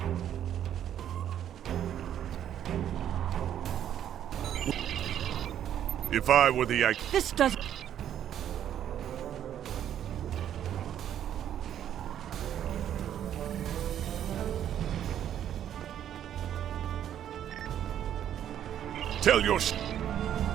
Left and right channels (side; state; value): left; quieter; 10.3 dB